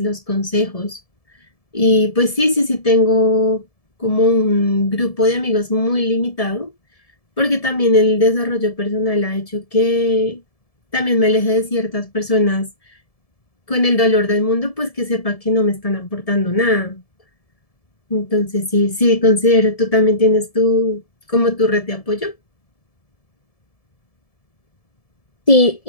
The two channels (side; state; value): right; late; 1.7 ms